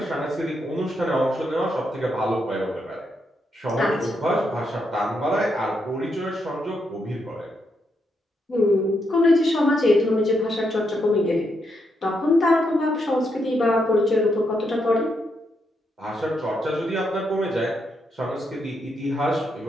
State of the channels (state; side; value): normal; both; correlation 0.80